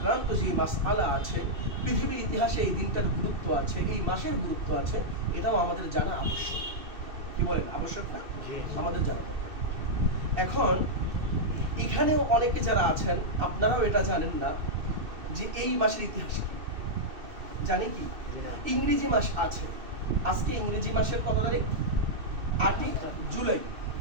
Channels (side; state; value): left; late; 2.6 ms